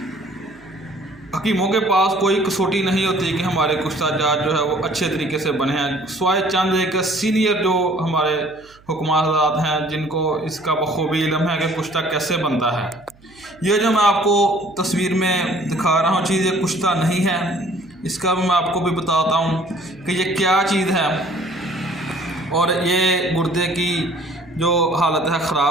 हकीमों के पास कोई कसौटी नहीं होती कि हमारे कुश्ता जात जो है वो अच्छे तरीके से बने हैं, स्वाय चंद एक सीनियर जो हमारे हुक्मा हज़रात हैं जिनको इसका बखूबी इल्म है कि कुश्ता कैसे बनता है। ये जो मैं आपको तस्वीर में दिखा रहा हूँ चीज़, ये कुश्ता नहीं है, इसका मैं आपको भी बताता हूँ कि ये क्या चीज़ है और ये गुर्दे की जो हालत है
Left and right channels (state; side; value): noise; right; hum, 28 dB below the sound